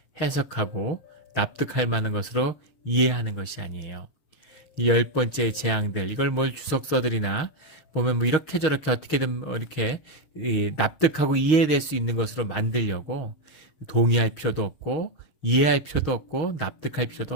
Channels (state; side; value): late; right; 6.4 ms